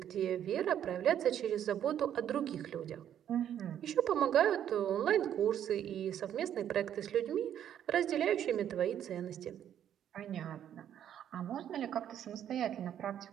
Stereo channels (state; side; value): quieter; left; 10.1 dB